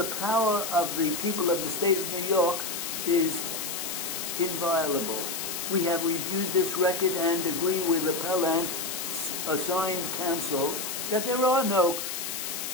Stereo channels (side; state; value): left; noise; hiss, 4 dB below the sound